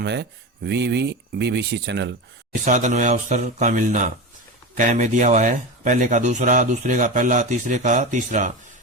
है BBC चैनल। साधन व अवसर का मिलना कै में दिया हुआ है। पहले का दूसरा, दूसरे का पहला, तीसरे का तीसरा।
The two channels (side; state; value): both; normal; correlation 0.22